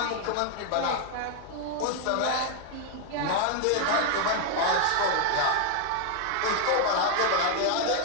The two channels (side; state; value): both; different; correlation 0.01